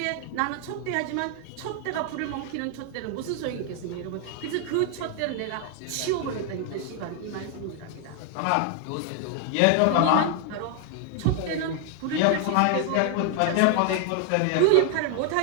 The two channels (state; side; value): different; both; correlation 0.00